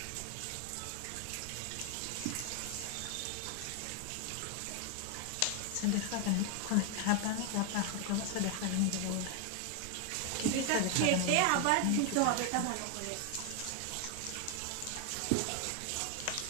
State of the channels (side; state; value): both; different; correlation 0.01